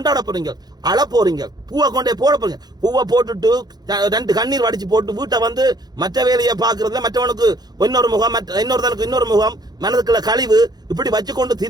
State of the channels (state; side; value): late; left; 0.19 ms